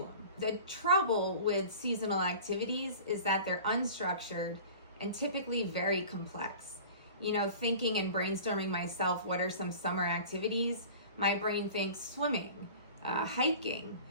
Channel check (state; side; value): inverted; both; correlation -0.41